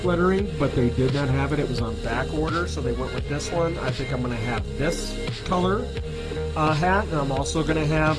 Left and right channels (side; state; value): both; identical; correlation 1.00